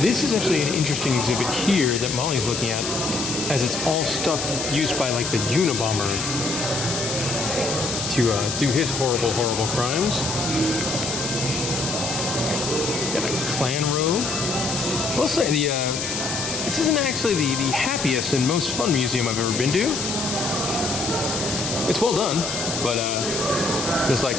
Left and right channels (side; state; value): left; noise; hiss, 3 dB below the sound